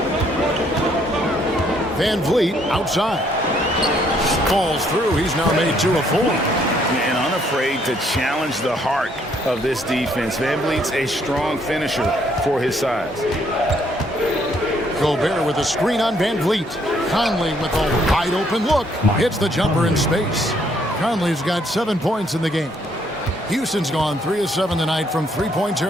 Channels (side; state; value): both; normal; correlation 0.68